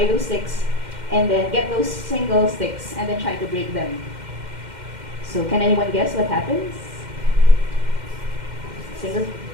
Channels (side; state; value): left; late; 2.1 ms